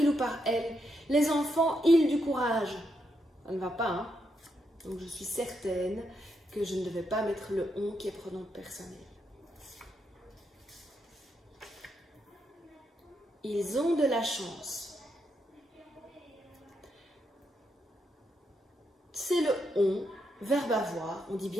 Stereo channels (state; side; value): normal; both; correlation 0.81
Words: ou par elle? Les enfants, ils du courage. Ça ne va pas, Donc je suis certaine que je ne devais pas mettre le on qui est pronom personnel. Ils ont de la chance. C'est le on, verbe avoir, on dit